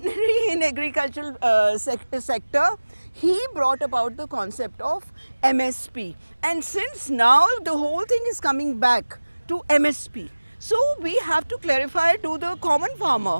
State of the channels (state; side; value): inverted; both; correlation -1.00